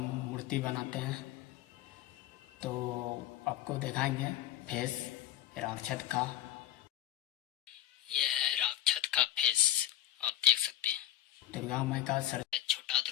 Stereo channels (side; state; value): right; quieter; 13.5 dB